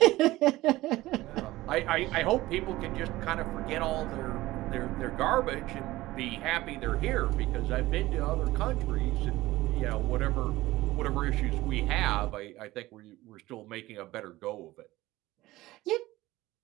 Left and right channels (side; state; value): left; quieter; 17.7 dB